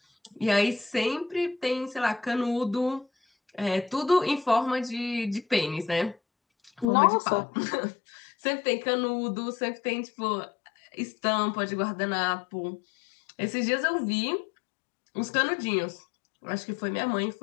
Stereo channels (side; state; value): right; drops out; at 6.9 s